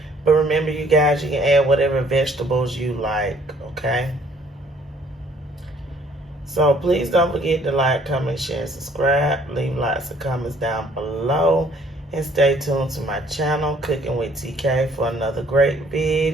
But remember, you guys, you can add whatever vegetables you like, okay? So please don't forget to like, comment, share, and subscribe. Leave lots of comments down below. And stay tuned to my channel, Cooking with TK, for another great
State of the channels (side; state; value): both; normal; correlation 0.60